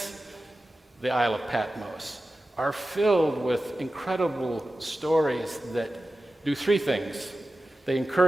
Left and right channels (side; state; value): both; normal; correlation 0.94